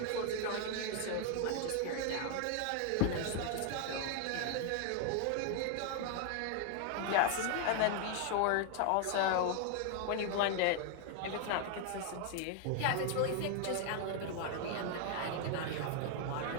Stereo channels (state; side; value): different; both; correlation 0.00